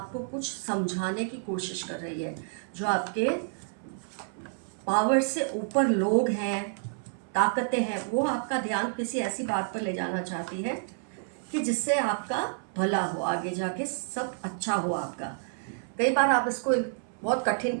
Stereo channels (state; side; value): silent; left; 58 dB below the other